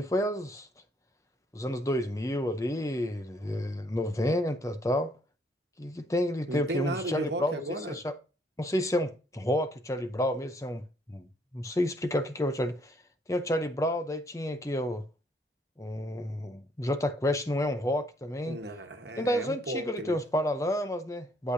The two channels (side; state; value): both; normal; correlation 0.67